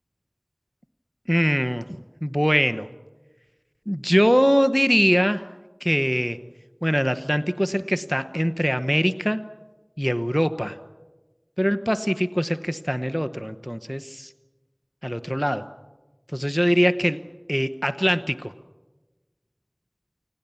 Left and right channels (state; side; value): identical; both; correlation 1.00